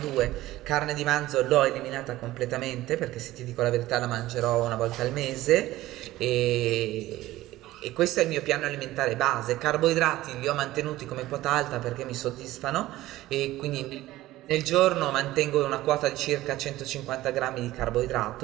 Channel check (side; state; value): left; quieter; 16.4 dB